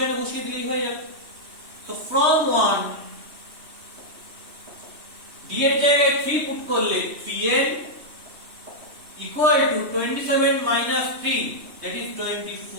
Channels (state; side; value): late; left; 3.2 ms